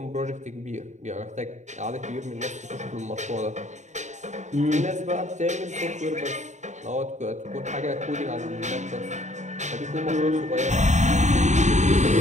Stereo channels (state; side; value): late; left; 0.34 ms